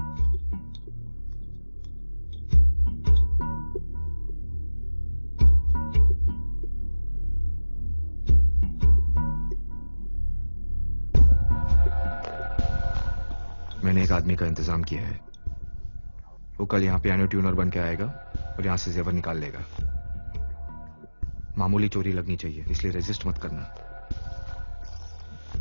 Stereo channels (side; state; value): both; inverted; correlation -1.00